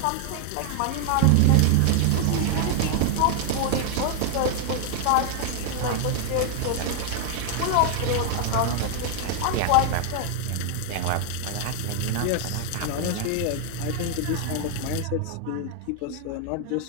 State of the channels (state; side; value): different; both; correlation 0.00